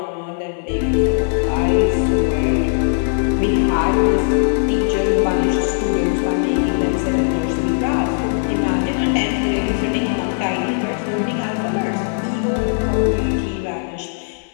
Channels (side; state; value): right; silent; 55 dB below the other